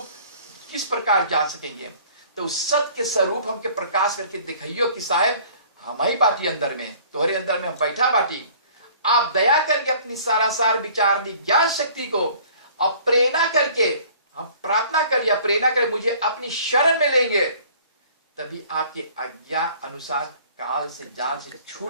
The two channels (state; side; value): inverted; both; correlation -0.52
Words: किस प्रकार जान सकेंगे। तो उस सत्य के स्वरूप हमके प्रकाश करके दिखाइयो कि साहेब हम ही बाटी अंदर में, तुम्हारे अंदर में हम बैठा बाटी। आप दया करके अपनी सारासार विचारनी ज्ञान शक्ति को अब प्रेरणा करके हम प्रार्थना करिए, प्रेरणा करें मुझे अपनी शरण में लेंगे, तभी आपके आज्ञा अनुसार काल से जाल से